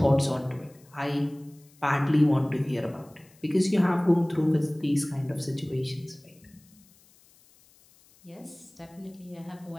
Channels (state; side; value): noise; left; hiss, 29 dB below the sound